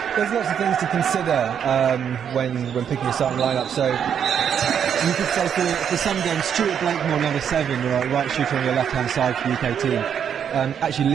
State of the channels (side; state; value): left; quieter; 8.2 dB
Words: There's lots of things to consider when picking a starting lineup. So you could say for some games, Stuart Blakemore, number 7, the right shooter on your left-hand side for the UK team, actually